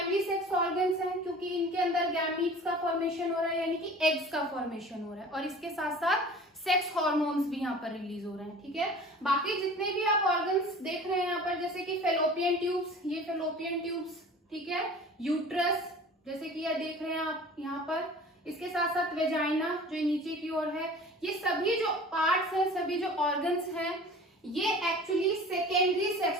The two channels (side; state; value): both; normal; correlation 0.42